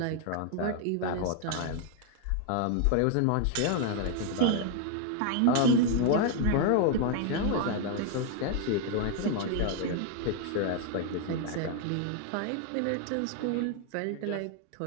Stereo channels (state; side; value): different; both; correlation 0.01